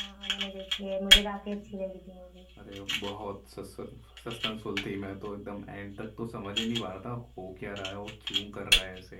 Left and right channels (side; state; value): both; identical; correlation 1.00